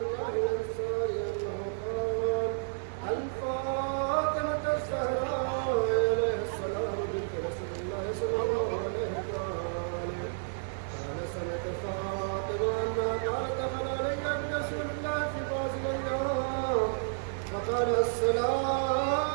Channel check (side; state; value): left; silent; 57 dB below the other